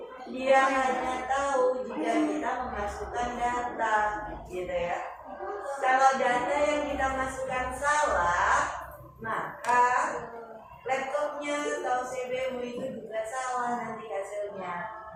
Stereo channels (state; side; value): identical; both; correlation 1.00